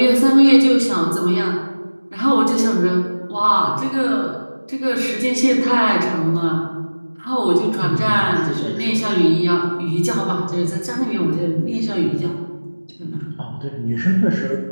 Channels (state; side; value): inverted; both; correlation -1.00